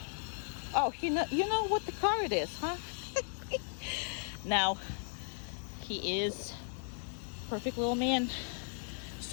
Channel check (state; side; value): silent; right; 54 dB below the other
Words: Oh, you know what the car it is, huh? Now, he is perfect little man.